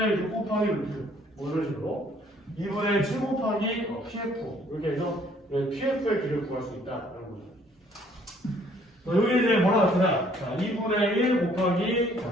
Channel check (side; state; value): both; normal; correlation 0.61